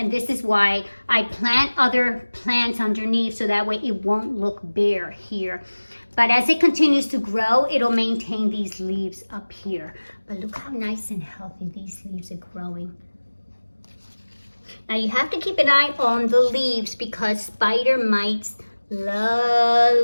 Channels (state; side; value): inverted; both; correlation -1.00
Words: this is why I plant other plants underneath, so that way it won't look bare here. But as it continues to grow, it'll maintain these leaves up here. But look how nice and healthy these leaves are growing. Now you have to keep an eye on the leaves, because spider mites